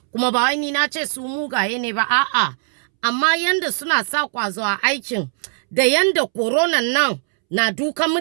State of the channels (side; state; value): left; silent; 66 dB below the other